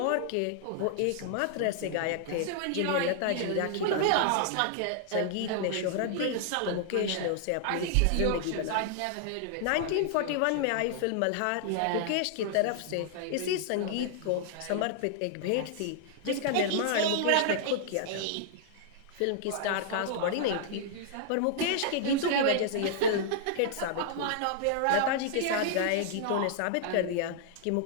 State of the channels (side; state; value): both; different; correlation -0.01